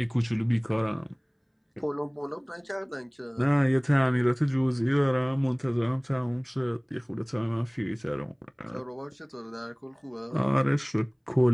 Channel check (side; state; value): both; identical; correlation 1.00